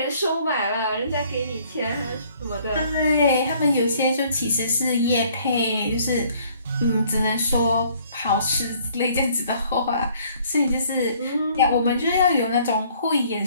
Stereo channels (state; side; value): inverted; both; correlation -0.60